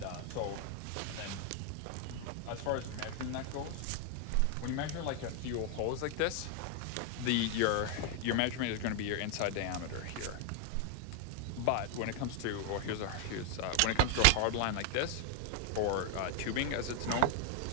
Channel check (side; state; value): both; different; correlation 0.00